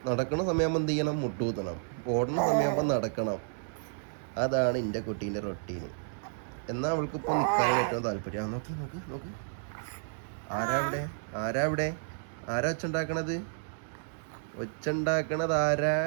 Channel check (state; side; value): silent; left; digital silence